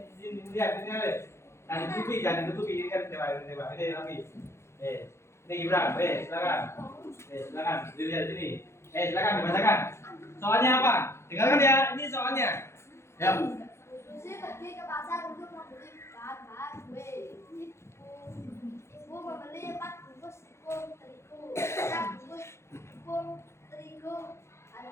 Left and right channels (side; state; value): right; late; 0.13 ms